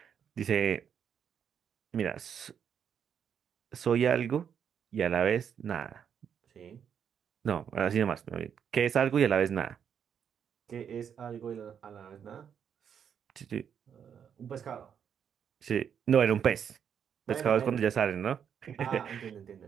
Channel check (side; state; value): left; quieter; 8.0 dB